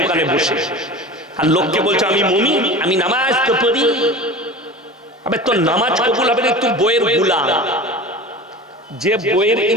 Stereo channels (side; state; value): both; normal; correlation 0.35